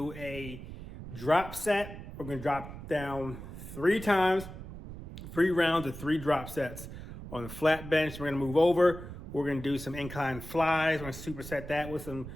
a drop set. We're gonna drop down 3 times, 3 rounds of 3 drop sets. On the flat bench, we're gonna move over. We're gonna do some incline flies. We're gonna superset that with some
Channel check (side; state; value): right; noise; rumble, 11 dB below the sound